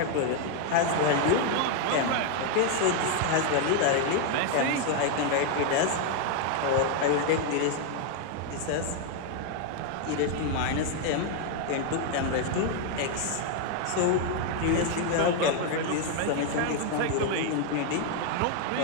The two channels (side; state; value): both; different; correlation 0.00